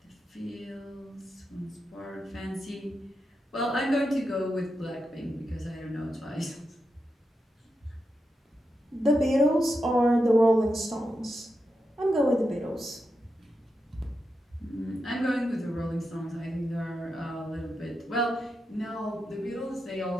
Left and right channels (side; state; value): both; normal; correlation 0.87